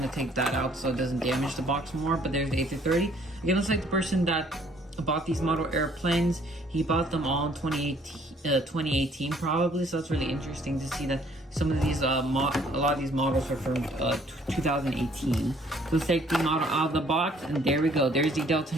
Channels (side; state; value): both; normal; correlation 0.61